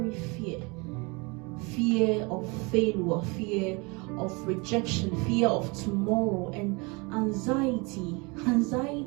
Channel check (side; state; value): left; quieter; 28.3 dB